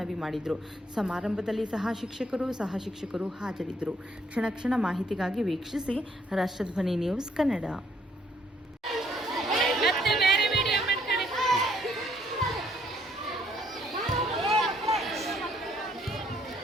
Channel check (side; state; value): both; normal; correlation 0.68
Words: ಮಾಡಿದರು. ಸಮಾರಂಭದಲ್ಲಿ ಸಹ ಶಿಕ್ಷಕರು ಹಾಜರಿದ್ದರು. ಕ್ಷಣ ಮಾಹಿತಿಗಾಗಿ ವೀಕ್ಷಿಸಿ ರಾಷ್ಟ್ರಧ್ವನಿ ನ್ಯೂಸ್ ಕನ್ನಡ.